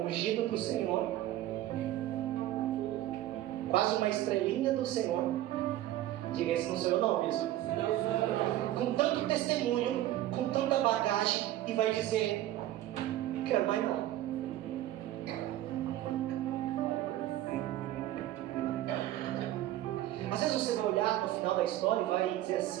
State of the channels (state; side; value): quieter; left; 14.1 dB